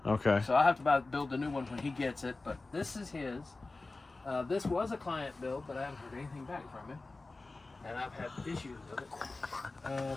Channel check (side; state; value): right; quieter; 3.4 dB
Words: Okay. So I have to build the new one when he gets it. But this is his. This was a client build, but I haven't heard anything back from him, and I've had issues with it.